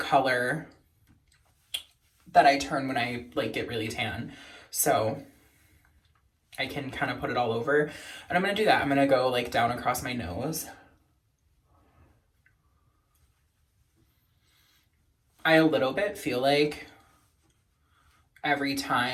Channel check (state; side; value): identical; both; correlation 1.00